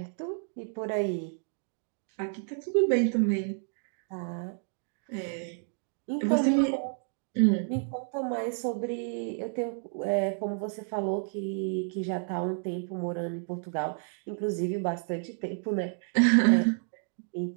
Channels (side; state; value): left; silent; 58 dB below the other